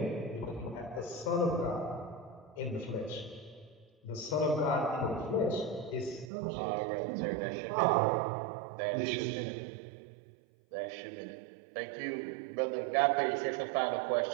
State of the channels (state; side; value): drops out; left; at 6.3 s